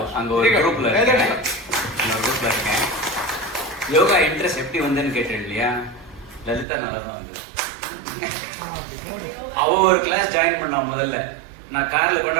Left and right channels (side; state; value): left; drops out; at 6.7 s